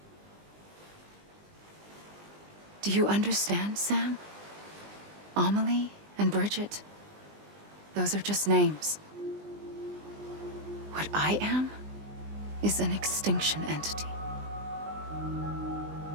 Do you understand, Sam? Amelie and Bridget, those are just names. What I am is an extinction entity.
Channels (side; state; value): left; late; 20 ms